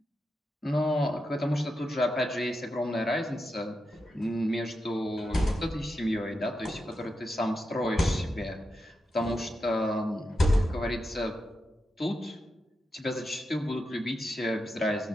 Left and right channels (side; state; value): both; normal; correlation 0.87